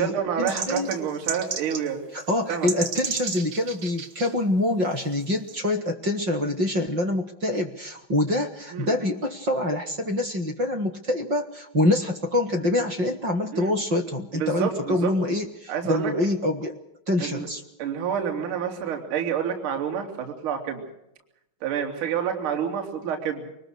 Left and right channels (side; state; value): left; late; 6.3 ms